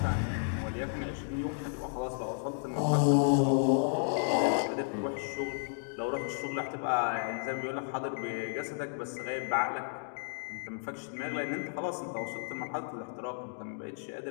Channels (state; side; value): silent; right; digital silence